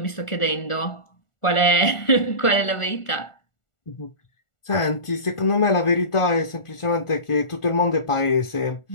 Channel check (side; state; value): right; late; 1.4 ms